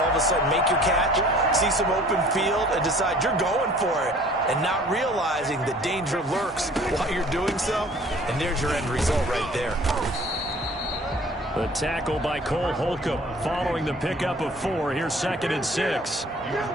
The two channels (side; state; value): both; normal; correlation 0.51